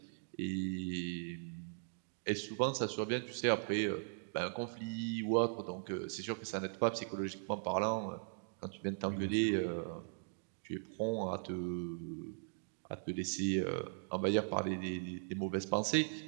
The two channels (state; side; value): silent; left; digital silence